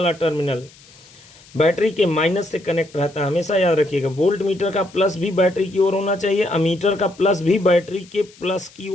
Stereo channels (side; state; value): left; noise; hiss, 25 dB below the sound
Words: टर्मिनल बैटरी के माइनस से कनेक्ट रहता है। हमेशा याद रखिएगा, वोल्ट मीटर का प्लस भी बैटरी की ओर होना चाहिए, अमीटर का प्लस भी बैटरी के प्लस की